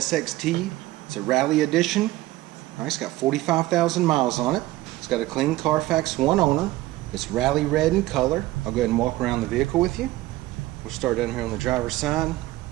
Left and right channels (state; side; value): quieter; left; 17.3 dB